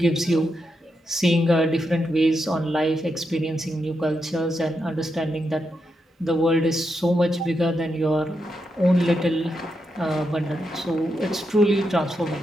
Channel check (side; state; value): both; normal; correlation 0.84